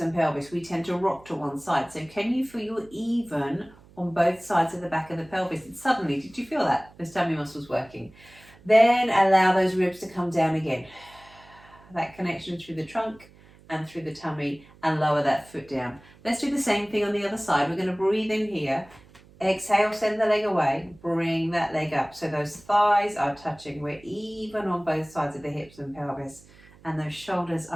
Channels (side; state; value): right; noise; hum, 25 dB below the sound